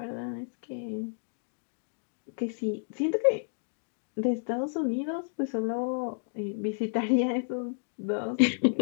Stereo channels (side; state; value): right; silent; digital silence